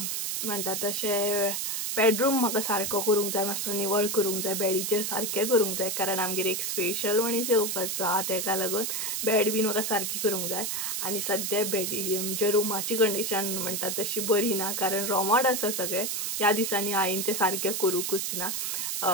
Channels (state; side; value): noise; right; hiss, 1 dB below the sound